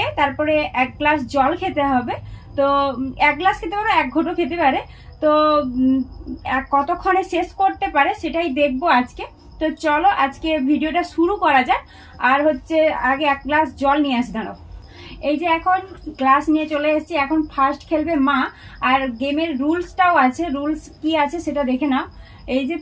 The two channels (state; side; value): identical; both; correlation 1.00